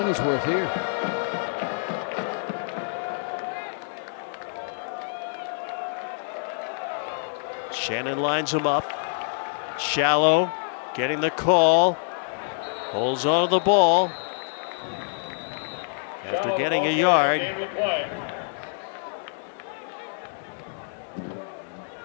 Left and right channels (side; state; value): right; silent; 61 dB below the other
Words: worth here. Shannon lines him up. Shallow getting the call. Holds on to the ball. After getting a yard.